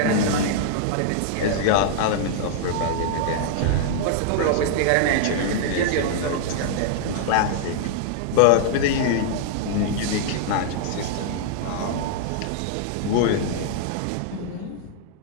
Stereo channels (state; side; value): different; both; correlation -0.01